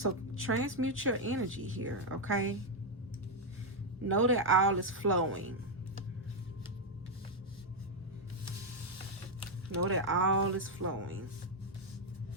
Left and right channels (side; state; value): both; normal; correlation 0.01